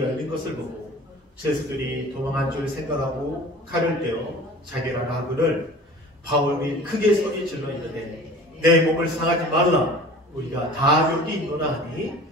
것을 보고 제수들이 도망한 줄 생각하고 칼을 떼어 자기라 하거늘 바울이 크게 소리 질러 이르되 내 몸을 상하지 말라. 우리가 다 여기 있노라 하니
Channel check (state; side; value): normal; both; correlation 0.42